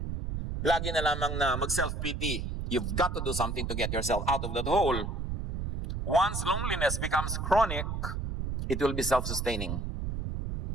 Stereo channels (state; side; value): noise; right; rumble, 3 dB below the sound